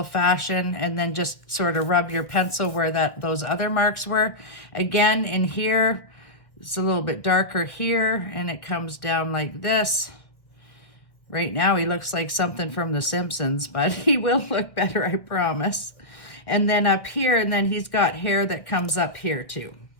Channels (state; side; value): late; right; 1.7 ms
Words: fashion, and then just sort of rub your pencil where those other marks were. Again, in here, it's a little bit darker here, and it comes down like this. Right now, he looks like something from The Simpsons, but he will look better, I promise. And then up here, and then he's got hair that comes up here too.